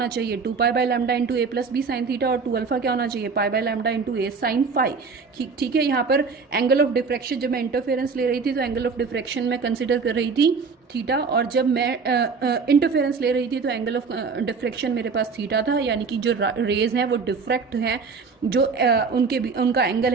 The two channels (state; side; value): quieter; left; 5.0 dB